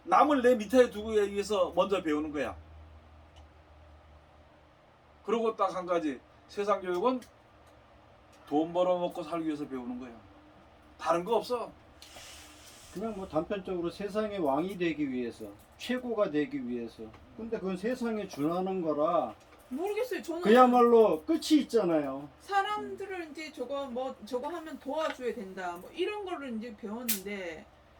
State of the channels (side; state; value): both; identical; correlation 1.00